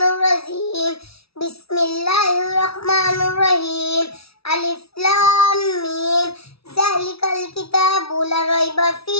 الرجيم بسم الله الرحمن الرحيم ألف لام ميم ذلك الكتاب لا ريب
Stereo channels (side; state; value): right; late; 0.76 ms